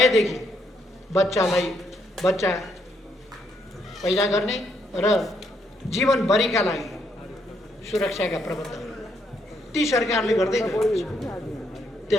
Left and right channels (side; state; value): both; normal; correlation 0.74